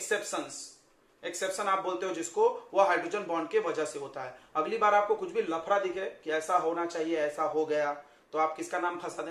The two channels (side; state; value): both; identical; correlation 1.00